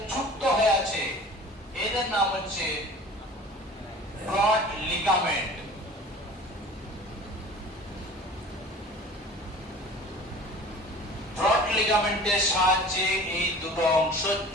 যুক্ত হয়ে আছে, এদের নাম হচ্ছে ব্রড লিগামেন্ট। ব্রড লিগামেন্টের সাহায্যে এই দুটো অংশ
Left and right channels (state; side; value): normal; both; correlation 0.42